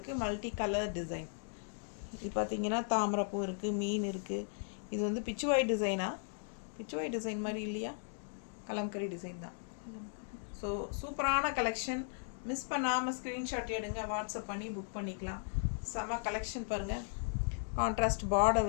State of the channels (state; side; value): silent; right; digital silence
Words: மல்டி கலர் டிசைன். இது பார்த்திங்கன்னா தாமரைப்பூ இருக்குது, மீன் இருக்குது. இது வந்து பிச்சுவாய் டிசைனா, பிச்சுவாய் டிசைன் மாதிரி இல்லையா, கலம்கரி டிசைன் தான். ஸோ சூப்பரான கலெக்ஷன். மிஸ் பண்ணாமல் ஸ்க்ரீன்ஷாட் எடுங்க, வாட்ஸ்அப் பண்ணி புக் பண்ணிக்கலாம். செம கலெக்ஷன் பாருங்கள். கான்ட்ராஸ்ட் பார்டர்